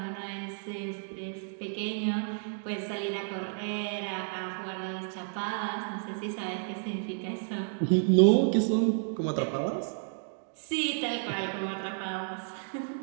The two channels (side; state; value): left; silent; digital silence